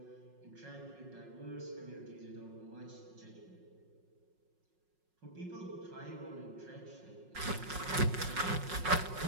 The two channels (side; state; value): left; late; 5.5 ms